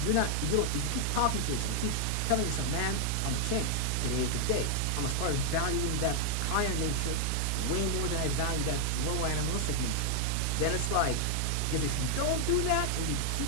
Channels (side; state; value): both; different; correlation 0.00